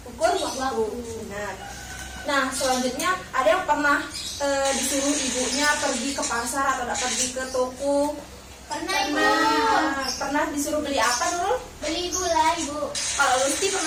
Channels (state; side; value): identical; both; correlation 1.00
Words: ukur waktu. Benar. Nah, selanjutnya ada yang pernah disuruh ibunya pergi ke pasar atau pergi ke toko. Pernah Ibu Pernah disuruh beli apa dulu? beli gula Ibu Kalau Lusti